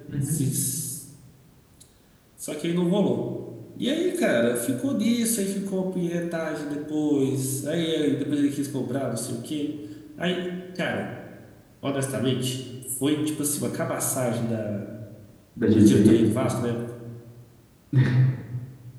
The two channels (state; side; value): identical; both; correlation 1.00